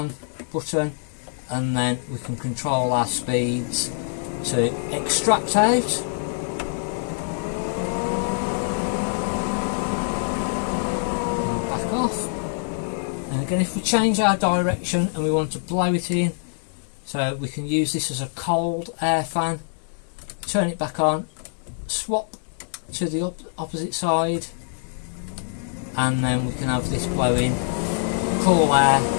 button, and then we can control our speeds to extract out. And back off. And again, if we change our direction and we want to blow it in, so we can use this as a cold air fan, turn it back on, swap to the opposite side, and then we can have this blowing cool air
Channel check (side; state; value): right; silent; 62 dB below the other